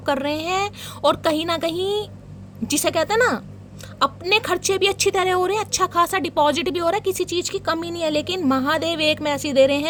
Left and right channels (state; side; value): identical; both; correlation 1.00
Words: कर रहे हैं, और कहीं ना कहीं जिसे कहते हैं ना अपने खर्चे भी अच्छी तरह हो रहे हैं, अच्छा खासा डिपॉजिट भी हो रहा है, किसी चीज़ की कमी नहीं है। लेकिन महादेव एक मैसेज दे रहे